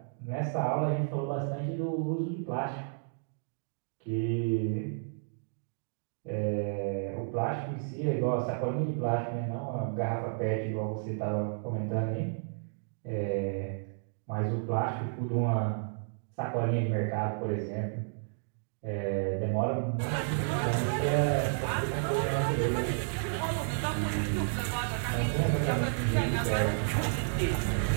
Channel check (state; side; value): silent; left; digital silence